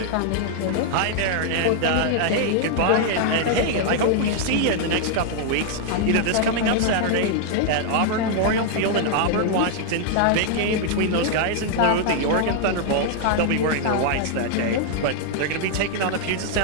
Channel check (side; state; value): both; different; correlation 0.00